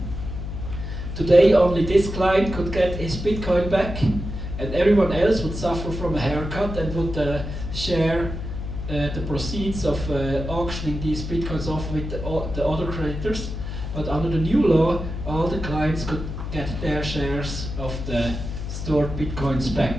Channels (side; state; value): left; noise; hum, 6 dB below the sound